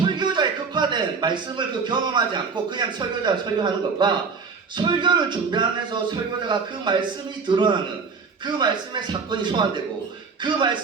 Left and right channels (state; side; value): quieter; left; 5.1 dB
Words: 극화된 말씀을 경험하지 않고 그냥 설교자가 설교하는 것과 설교를 준비하면서 설교자가 그 말씀이 드러나는 그 말씀의 사건이 소환되고 그